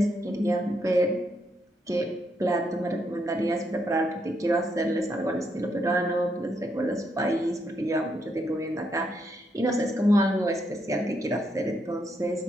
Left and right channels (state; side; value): normal; both; correlation 0.77